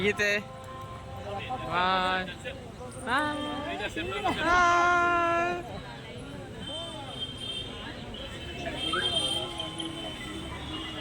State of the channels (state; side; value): identical; both; correlation 1.00